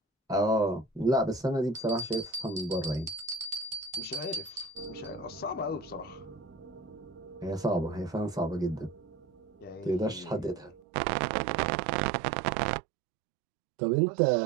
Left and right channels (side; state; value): left; drops out; at 10.8 s